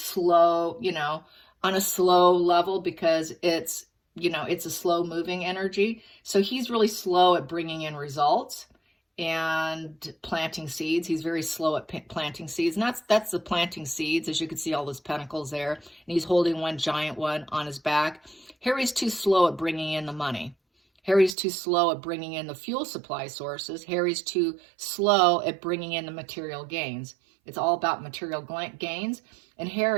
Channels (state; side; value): drops out; left; at 21.4 s